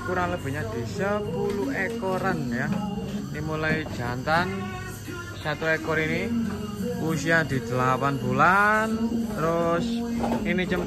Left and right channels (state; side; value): identical; both; correlation 1.00